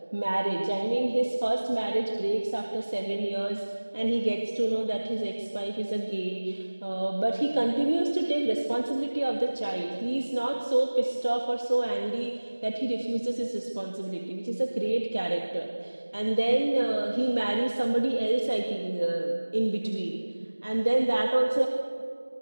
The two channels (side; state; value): both; inverted; correlation -1.00